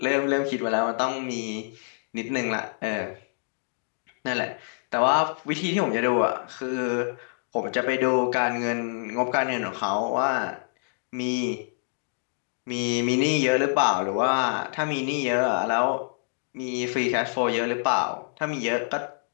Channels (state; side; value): silent; right; digital silence